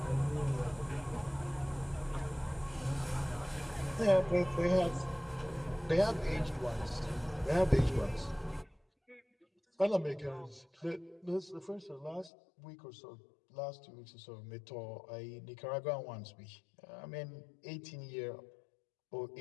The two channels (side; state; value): right; drops out; at 12.3 s